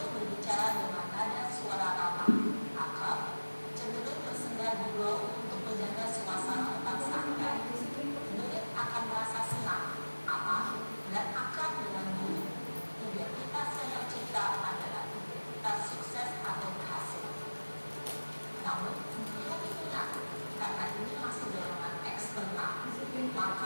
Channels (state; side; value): inverted; both; correlation -1.00